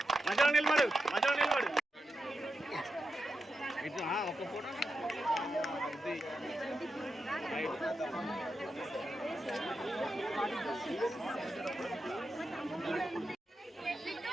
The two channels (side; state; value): both; normal; correlation 0.88